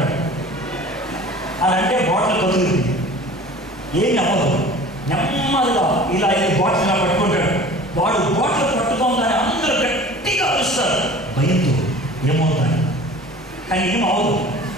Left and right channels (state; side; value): normal; both; correlation 0.43